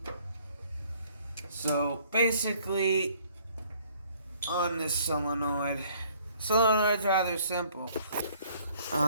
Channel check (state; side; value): inverted; both; correlation -0.60